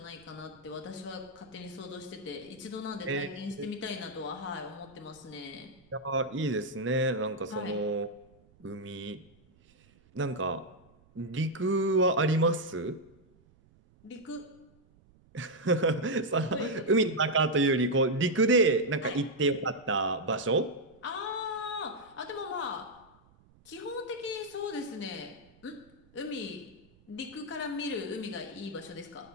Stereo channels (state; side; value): noise; right; rumble, 29 dB below the sound